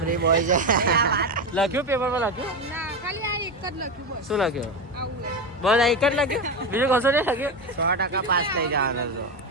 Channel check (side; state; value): both; normal; correlation 0.15